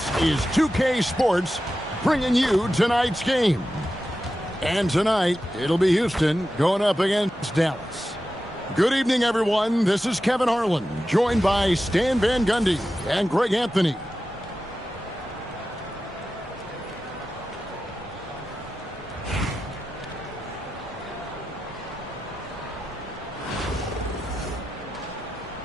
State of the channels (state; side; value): normal; both; correlation 0.92